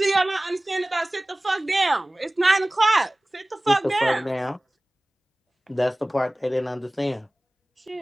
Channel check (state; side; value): normal; both; correlation 0.98